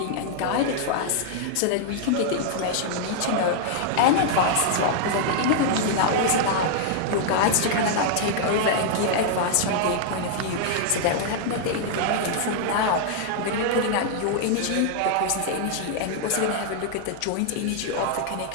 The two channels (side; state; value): both; different; correlation -0.01